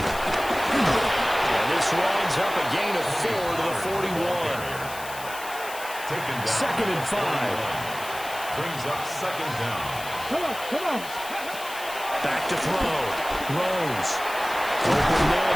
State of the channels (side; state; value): left; noise; hiss, 13 dB below the sound